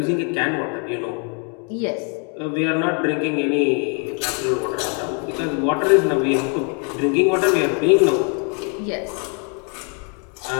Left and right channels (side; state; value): right; quieter; 38.3 dB